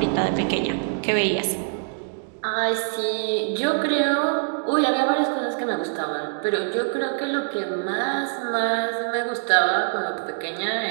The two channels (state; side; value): silent; left; digital silence